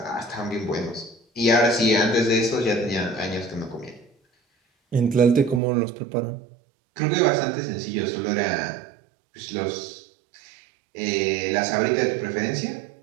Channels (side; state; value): left; drops out; at 5.6 s